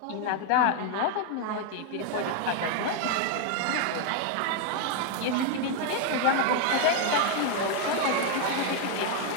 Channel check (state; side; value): different; both; correlation 0.00